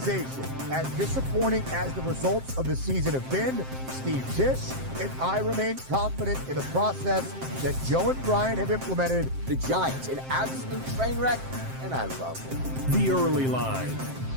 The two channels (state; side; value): late; left; 7.6 ms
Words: As disappointing as the results of the season have been, Steve Tisch and I remain confident in the process that Joe and Brian have implemented. The Giants, an absolute train wreck, and I love it. The early line.